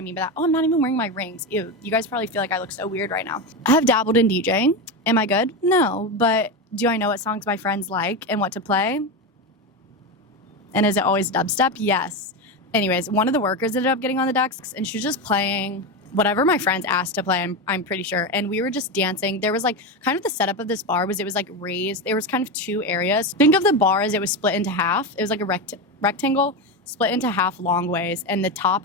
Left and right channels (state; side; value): normal; both; correlation 0.16